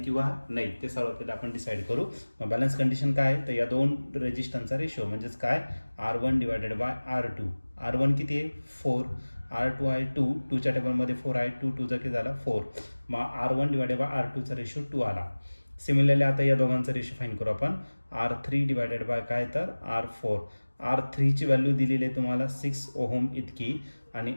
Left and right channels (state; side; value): inverted; both; correlation -1.00